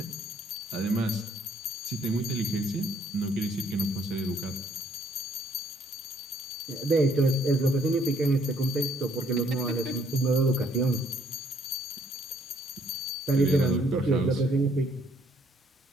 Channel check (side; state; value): both; normal; correlation 0.65